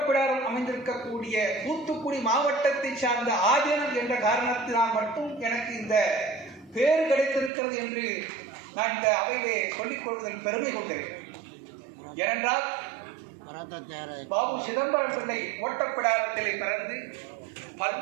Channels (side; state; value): left; drops out; at 7.5 s